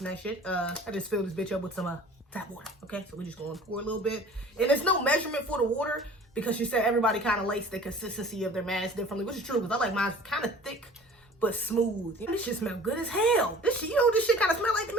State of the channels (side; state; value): both; normal; correlation 0.46